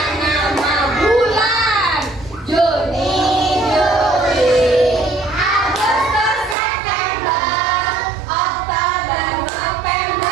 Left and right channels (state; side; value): drops out; left; at 6.6 s